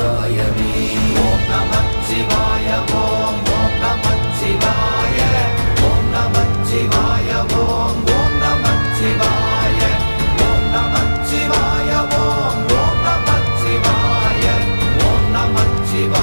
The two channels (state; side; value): inverted; both; correlation -1.00